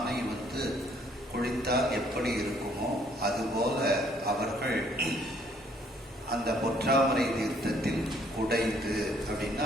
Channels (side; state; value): both; normal; correlation 0.63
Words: குளித்தால் எப்படி இருக்குமோ அதுபோல அவர்கள் அந்த பொற்றாமரை தீர்த்தத்தில் குடைந்து அப்படின்னா